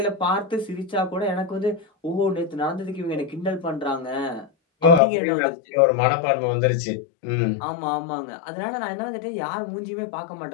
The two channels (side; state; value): right; drops out; at 5.0 s